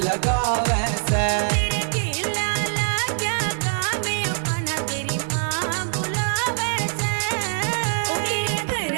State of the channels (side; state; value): left; silent; 63 dB below the other